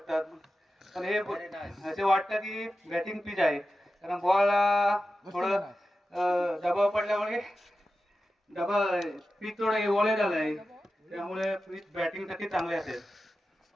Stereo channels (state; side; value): normal; both; correlation 0.93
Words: पण हे असे वाटतं की बॅटिंग पिच आहे कारण बॉल थोडं दबाव पडल्यामुळे पिच थोडं ओले झालं आहे त्यामुळे पिच बॅटिंगसाठी चांगले असेल.